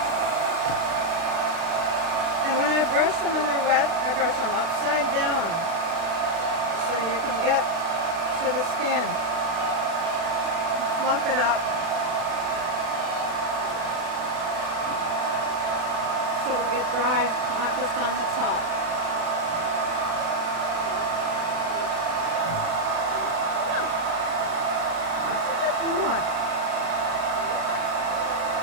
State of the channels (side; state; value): left; late; 36 ms